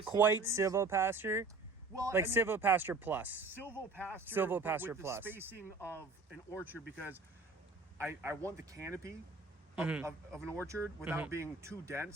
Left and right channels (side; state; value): left; quieter; 3.7 dB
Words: quite silvopasture. Well, like silvopasture plus. Silvopasture with plus. The spacing of an orchard because I want the canopy of an orchard without being too